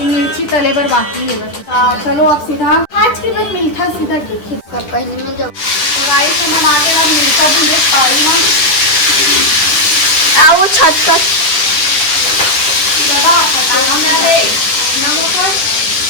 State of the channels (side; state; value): right; late; 10 ms